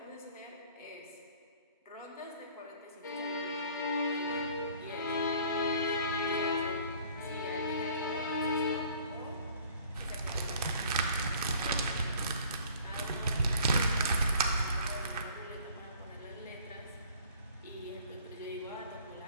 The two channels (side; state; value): both; inverted; correlation -0.53